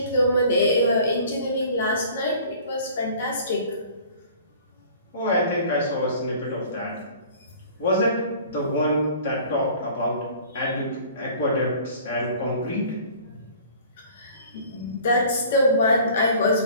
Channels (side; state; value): both; inverted; correlation -0.49